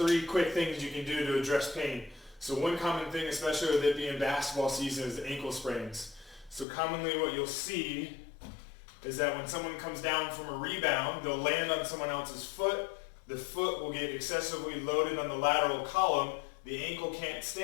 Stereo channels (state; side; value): drops out; right; at 6.7 s